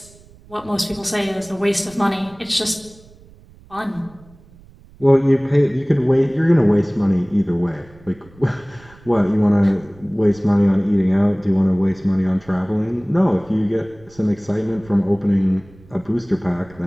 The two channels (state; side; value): noise; right; rumble, 25 dB below the sound